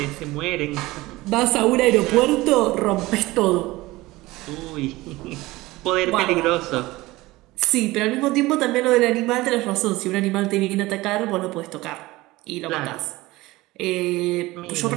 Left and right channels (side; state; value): left; quieter; 19.5 dB